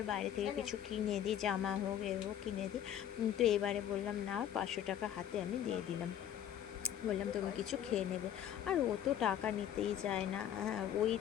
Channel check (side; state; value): right; quieter; 10.2 dB